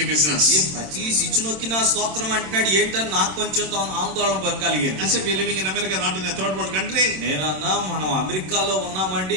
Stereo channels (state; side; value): late; left; 27 ms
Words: business. ఈ ప్రతి స్విచ్ నొక్కినా స్తోత్రం అంటున్నాడు ఏంటని నాకు కొంచెం ఆందోళన కలిగింది. I said we are living in America, not in a third world country. నేనన్నా మనం అమెరికాలో